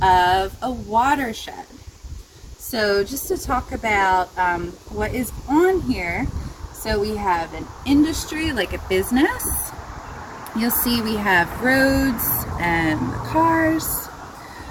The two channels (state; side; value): identical; both; correlation 1.00